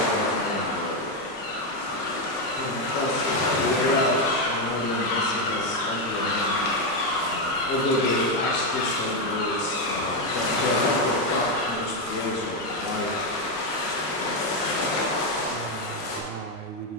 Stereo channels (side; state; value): both; normal; correlation 0.06